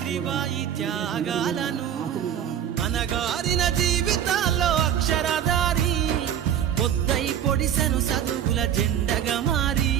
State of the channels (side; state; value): left; quieter; 9.7 dB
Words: త్యాగాలను అనగారిన జీవితాల్లో అక్షరధారి పొద్దై పొడిసెను చదువుల జెండగా మారి